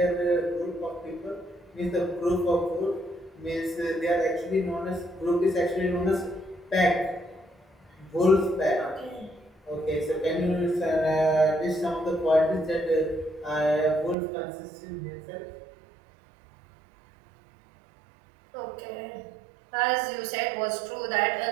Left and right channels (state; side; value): drops out; left; at 14.2 s